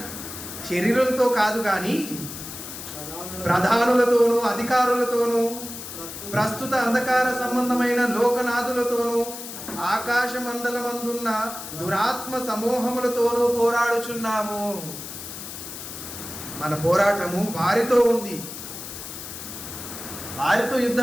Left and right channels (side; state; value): left; noise; hiss, 10 dB below the sound